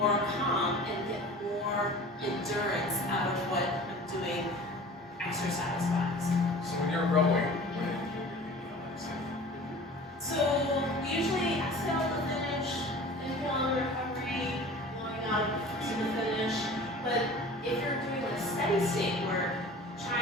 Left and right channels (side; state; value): both; normal; correlation 0.42